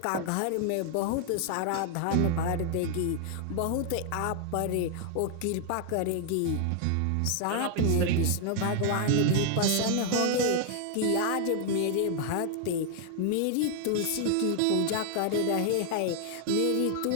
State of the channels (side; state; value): both; different; correlation 0.00